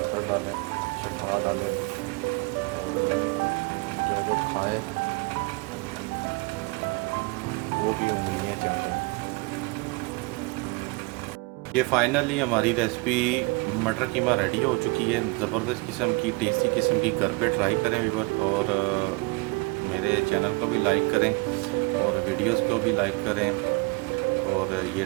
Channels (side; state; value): left; quieter; 26.4 dB